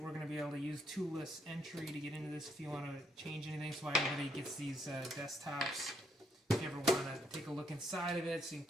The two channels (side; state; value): both; normal; correlation 0.73